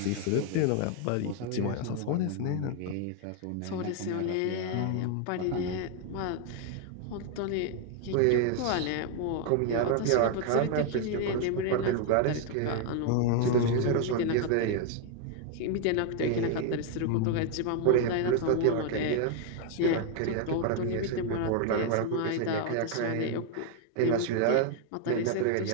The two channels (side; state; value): both; different; correlation 0.00